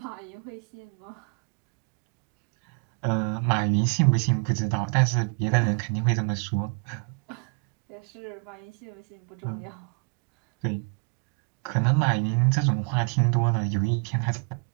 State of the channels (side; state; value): left; quieter; 40.0 dB